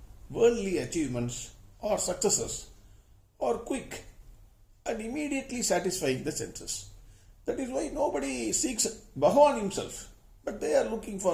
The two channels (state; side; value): identical; both; correlation 1.00